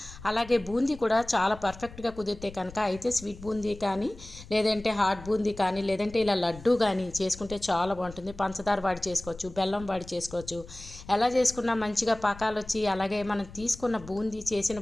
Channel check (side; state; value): left; noise; rumble, 17 dB below the sound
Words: అలాగే బూందీ కూడా చాలా పర్ఫెక్ట్గా కుదిరితే కనుక అయితే స్వీట్ బూందీ కానీ, లేదంటే హాట్ బూందీ కానీ, లేదంటే ఇలా లడ్డు కానీ చేసుకుంటే చాలా బాగుంటుంది. పంచదార వాడి చేసుకోవచ్చు, బెల్లం వాడి చేసుకోవచ్చు. ఎలా చేసుకున్నా మంచిగా పాకాలు వచ్చి, అలాగే మనం తీసుకున్న బూందీ, చేసిన